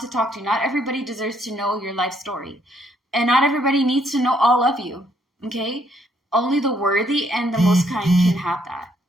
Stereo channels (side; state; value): both; normal; correlation 0.70